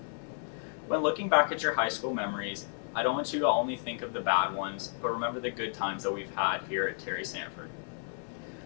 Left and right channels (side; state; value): right; silent; 56 dB below the other